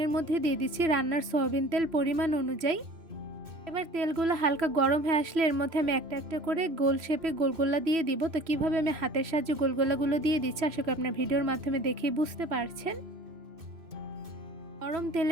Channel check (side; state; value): left; late; 3.0 ms